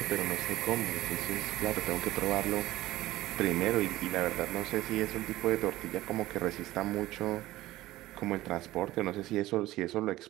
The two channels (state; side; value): quieter; left; 16.7 dB